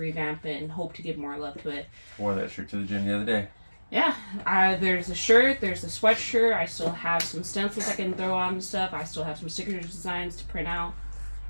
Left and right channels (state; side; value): inverted; both; correlation -1.00